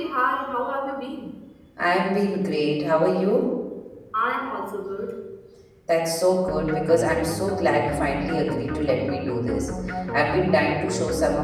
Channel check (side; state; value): both; identical; correlation 1.00